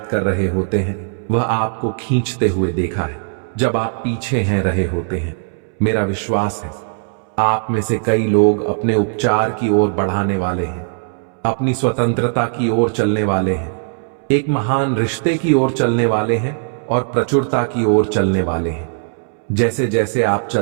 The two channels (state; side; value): silent; left; 67 dB below the other